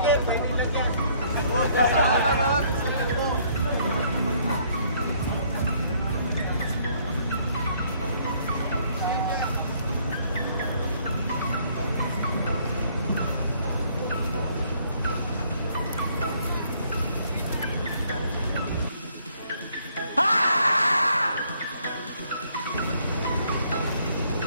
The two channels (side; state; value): both; inverted; correlation -0.65